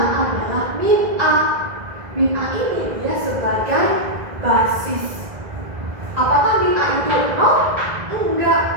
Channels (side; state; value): left; late; 2.0 ms